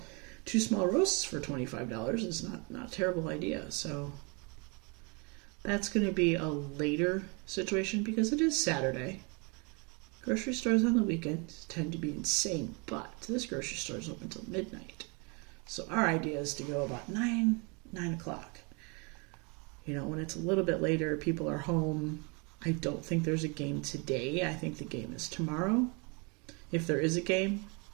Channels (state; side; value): quieter; left; 31.9 dB